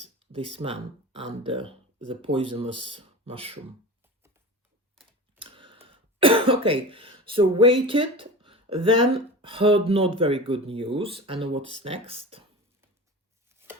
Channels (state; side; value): normal; both; correlation 0.32